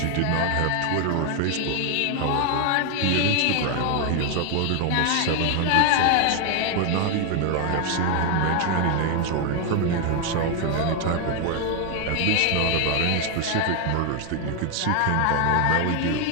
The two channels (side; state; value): both; different; correlation 0.01